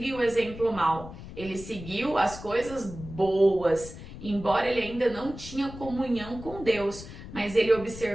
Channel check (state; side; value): noise; left; rumble, 13 dB below the sound